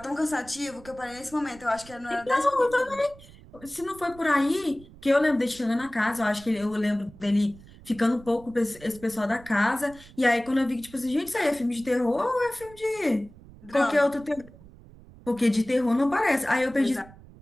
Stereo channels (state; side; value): noise; right; rumble, 21 dB below the sound